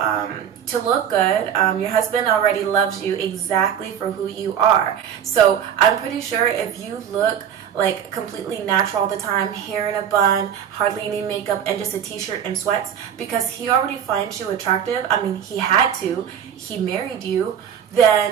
look good. Your husband already loves you exactly for who you are. So I'm pretty sure if you look like completely natural all the time, hair in a bun, hardly any makeup, and just a t-shirt and sweats, because he already finds you attractive, I mean, he had to, he married you,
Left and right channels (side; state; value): left; quieter; 8.8 dB